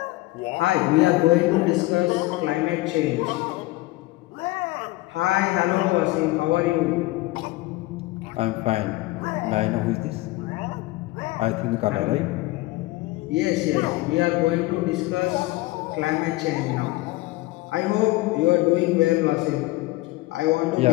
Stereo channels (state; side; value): quieter; right; 19.6 dB